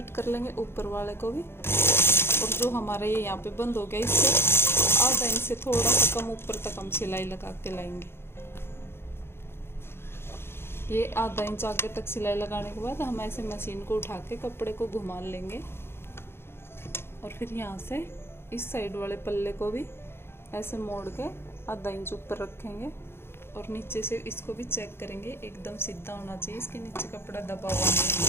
कर लेंगे, ऊपर वाले को भी। और जो हमारा ये यहाँ पे बंद हो गया, इससे आधा इंच से थोड़ा सा कम ऊपर तक हम सिलाई लगा के लाएंगे। ये आधा इंच आगे तक सिलाई लगाने के बाद हम ऐसे मशीन को उठा के कपड़े को घुमा लेंगे और फिर यहाँ से इस साइड वाले पल्ले को भी ऐसे मोड़ के आधा इंच ऊपर रखेंगे और नीचे से इसको भी चेक करेंगे, एकदम सीधा होना चाहिए। इसके नीचे कपड़ा दबा हुआ नहीं।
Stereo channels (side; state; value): right; late; 0.11 ms